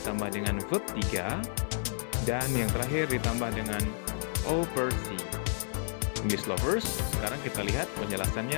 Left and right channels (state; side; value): silent; right; digital silence